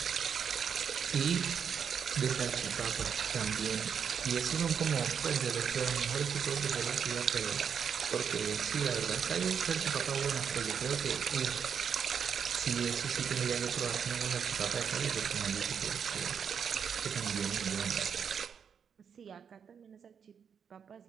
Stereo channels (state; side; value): quieter; left; 7.2 dB